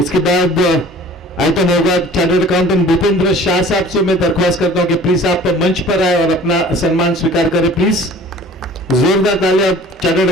इसके बाद आइटम होगा, चार्टर्ड अकाउंटेंट भूपेंद्र शाह साहब से मैं दरख्वास्त करता हूं कि प्लीज आप मंच पर आए और अपना सम्मान स्वीकार करें प्लीज. जोरदार तालियां chartered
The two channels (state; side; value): normal; both; correlation 0.47